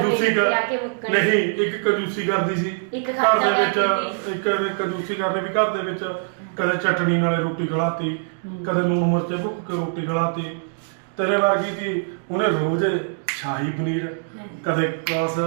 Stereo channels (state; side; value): silent; left; digital silence